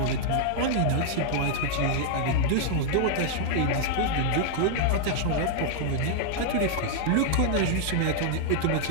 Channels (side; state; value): both; different; correlation -0.01